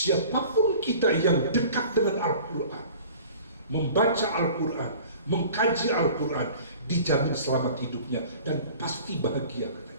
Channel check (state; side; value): inverted; both; correlation -0.45